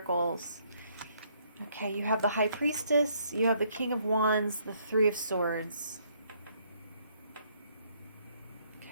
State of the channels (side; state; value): both; inverted; correlation -0.68